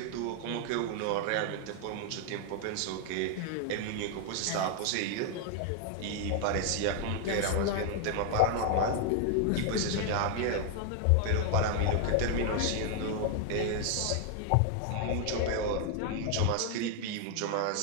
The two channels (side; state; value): both; different; correlation 0.00